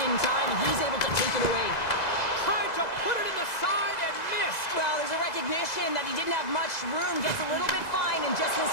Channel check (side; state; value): right; late; 2.0 ms